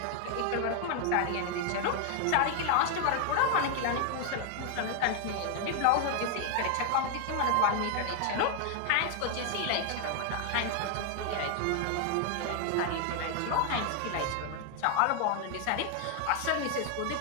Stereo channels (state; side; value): different; both; correlation 0.00